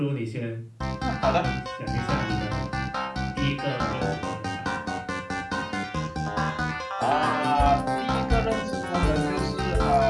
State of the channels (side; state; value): both; identical; correlation 1.00